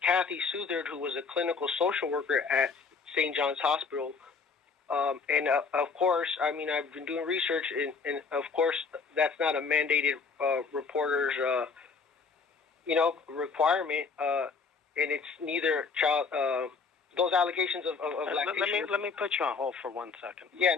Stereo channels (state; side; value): quieter; right; 5.0 dB